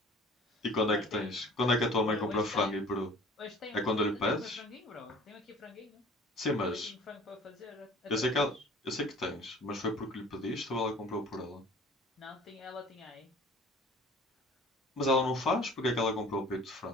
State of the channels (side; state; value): both; normal; correlation 0.47